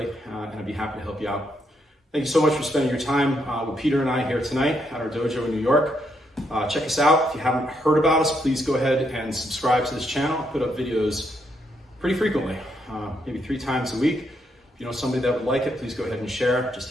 and I'd be happy to help you out. Thank you so much for spending your time with Peter and I here tonight at our dojo in New York. Check us out. If you haven't heard about us, please go ahead and subscribe to this channel. I put up videos pretty frequently, maybe 3 times a week. If you know somebody that would like it, please go ahead and share. It just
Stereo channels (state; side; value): normal; both; correlation 0.77